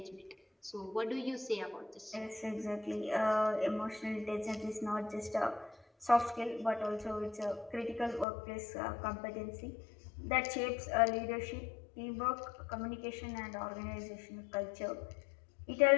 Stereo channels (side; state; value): right; drops out; at 8.2 s